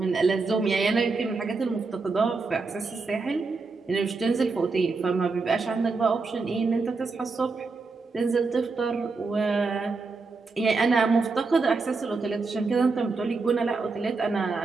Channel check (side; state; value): left; quieter; 4.1 dB